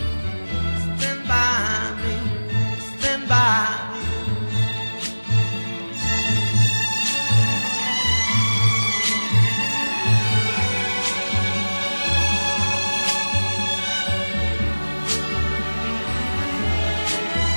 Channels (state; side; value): inverted; both; correlation -1.00